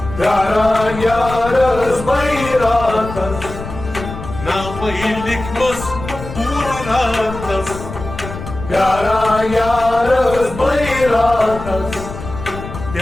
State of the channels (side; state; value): left; noise; rumble, 10 dB below the sound